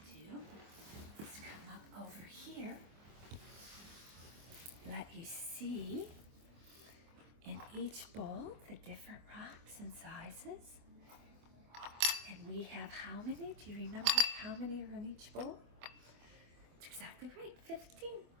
do is come up over here. Let you see in each bowl the different rocks and sizes. And we have how many? Do you remember how many are in each bowl? That's exactly right, 15.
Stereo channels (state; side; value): late; left; 24 ms